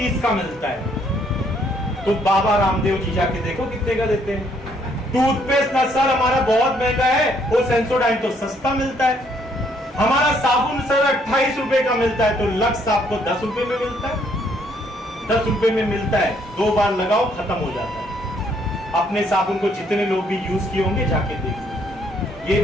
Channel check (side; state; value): both; normal; correlation 0.68